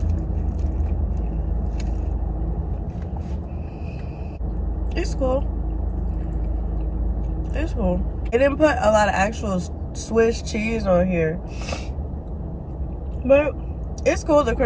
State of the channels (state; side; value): identical; both; correlation 1.00